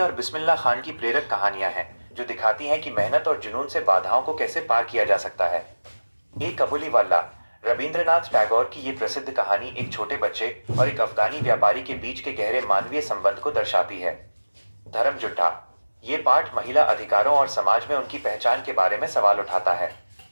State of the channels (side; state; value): both; inverted; correlation -1.00